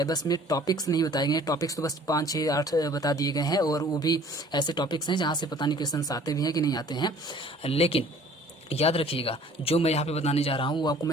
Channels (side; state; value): both; normal; correlation 0.52